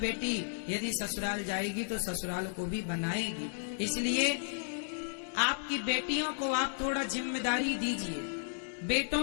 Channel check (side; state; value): right; silent; digital silence